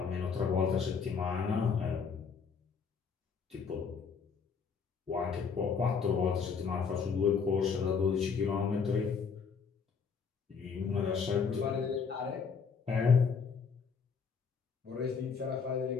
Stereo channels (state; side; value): quieter; right; 5.8 dB